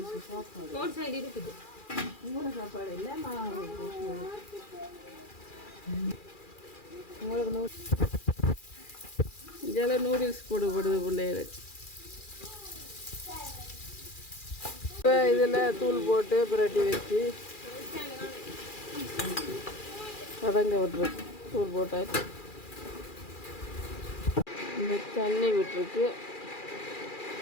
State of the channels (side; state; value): right; late; 2.4 ms